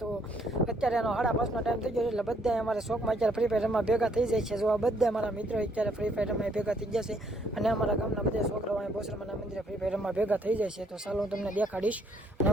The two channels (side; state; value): both; normal; correlation 0.68